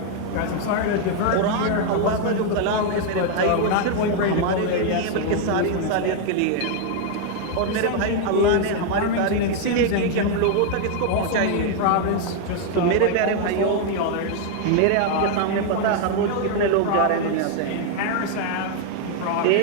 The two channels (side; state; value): both; different; correlation 0.00